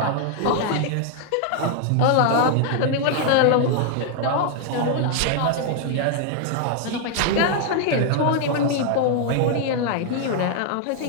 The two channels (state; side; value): different; both; correlation 0.00